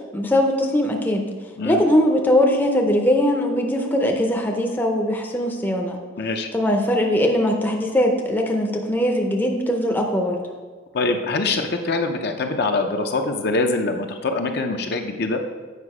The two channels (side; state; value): both; normal; correlation 0.52